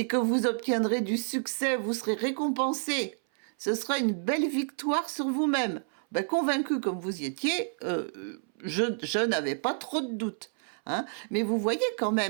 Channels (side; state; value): left; silent; 58 dB below the other